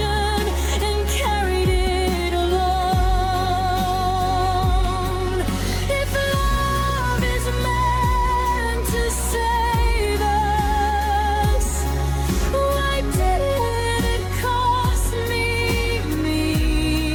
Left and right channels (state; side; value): identical; both; correlation 1.00